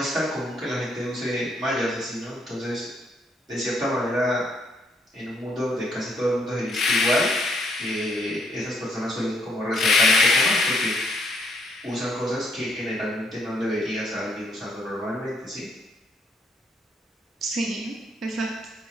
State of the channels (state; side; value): normal; both; correlation 0.71